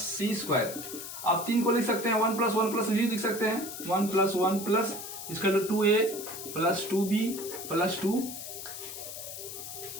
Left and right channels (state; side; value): noise; left; hiss, 9 dB below the sound